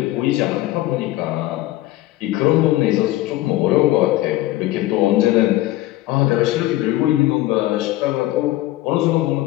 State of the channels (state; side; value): quieter; right; 16.6 dB